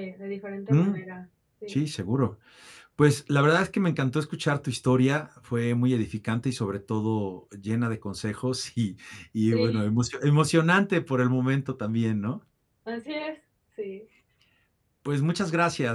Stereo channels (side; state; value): both; identical; correlation 1.00